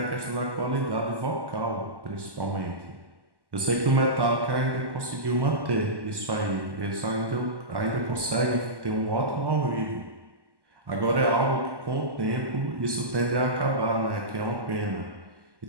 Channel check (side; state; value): left; late; 1.1 ms